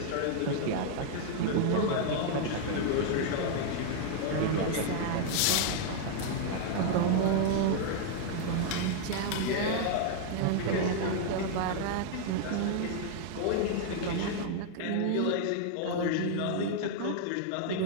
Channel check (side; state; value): both; different; correlation 0.00